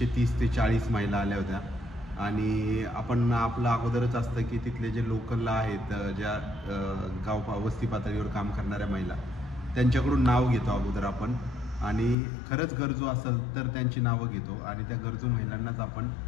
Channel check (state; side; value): drops out; right; at 12.2 s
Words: ते 40 महिला आल्या होत्या. आणि आपण आपलं अगोदरच असतं की तिथले जे लोकलला आहेत ज्या गाव वस्ती पातळीवर काम करणाऱ्या महिला त्यांच्याकडून नाव घेतो अगोदर आपण. आणि खरंच गरजू असेल तर त्यांची नावं घेतो आणि त्या गरजू महिलांनाच आपण